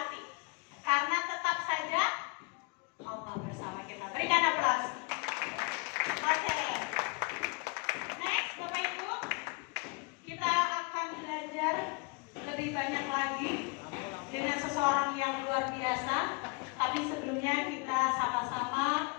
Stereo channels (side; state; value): right; quieter; 29.2 dB